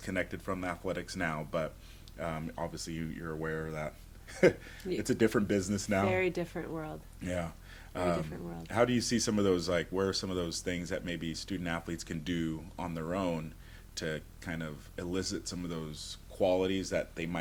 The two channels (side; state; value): both; identical; correlation 1.00